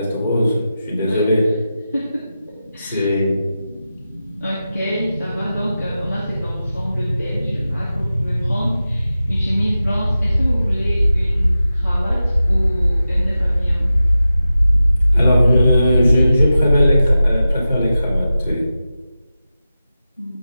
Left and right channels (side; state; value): both; inverted; correlation -0.93